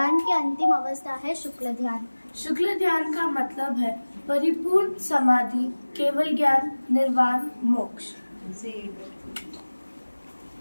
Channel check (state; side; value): inverted; both; correlation -1.00